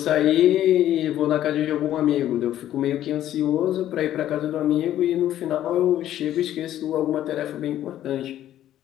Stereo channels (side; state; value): right; quieter; 12.3 dB